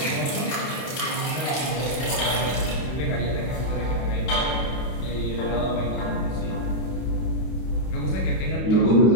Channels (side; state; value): right; late; 32 ms